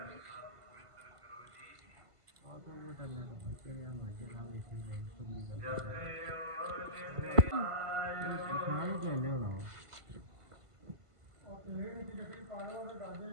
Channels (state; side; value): late; left; 1.5 ms